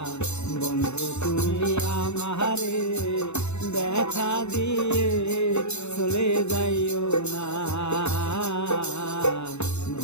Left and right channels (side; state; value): right; late; 0.81 ms